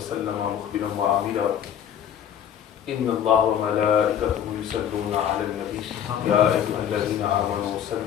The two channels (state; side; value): quieter; right; 9.3 dB